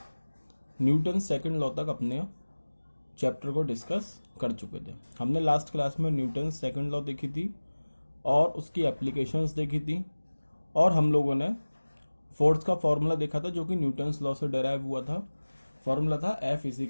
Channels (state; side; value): inverted; both; correlation -1.00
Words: न्यूटन सेकंड लॉ तक अपने चैप्टर को डिस्कस कर चुके थे। हमने लास्ट क्लास में न्यूटन सेकंड लॉ देखी थी और उसकी एप्लीकेशंस देखी थी, और हम लोगों ने फोर्स का फॉर्मूला देखा था जो कि न्यूटन्स लॉ से डेराइव हुआ था। फॉर्मूला था F